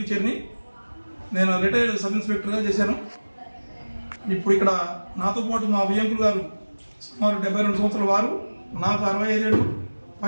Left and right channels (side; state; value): both; inverted; correlation -1.00